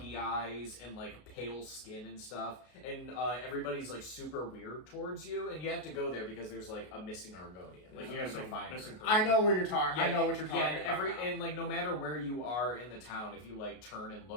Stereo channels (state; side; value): late; right; 33 ms